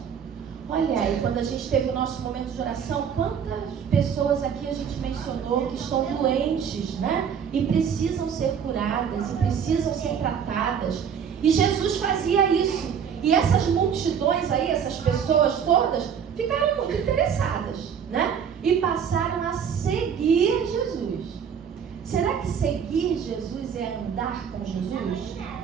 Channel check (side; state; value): left; quieter; 7.5 dB